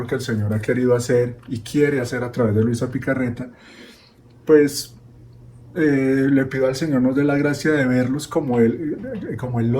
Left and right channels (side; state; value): both; identical; correlation 1.00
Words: que el Señor ha querido hacer y quiere hacer a través de Luisa Picarreta, pues le pido al Señor nos dé la gracia de verlos como Él